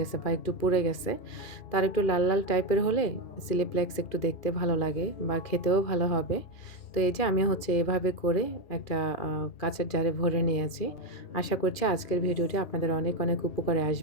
বা একটু পুড়ে গেছে। তো আরেকটু লাল, লাল টাইপের হলে ফ্লেক্স একটু দেখতে ভালো লাগে বা খেতেও ভালো হবে। তো এই যে আমি হচ্ছে এভাবে করে একটা কাঁচের জারে ভরে নিয়েছি। আশা করছি আজকের ভিডিওটি আপনাদের অনেক, অনেক উপকারে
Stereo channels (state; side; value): late; right; 2.4 ms